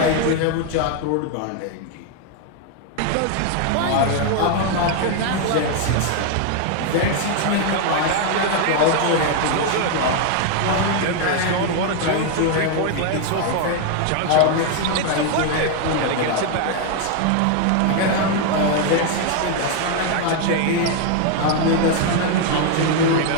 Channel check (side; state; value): both; different; correlation 0.01